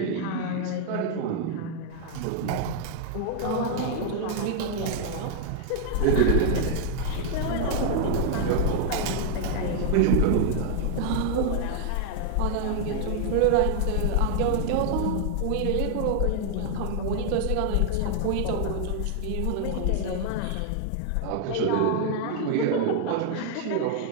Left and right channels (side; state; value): both; different; correlation 0.00